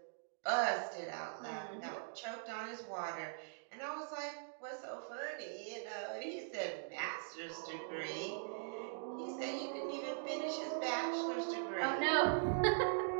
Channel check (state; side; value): silent; left; digital silence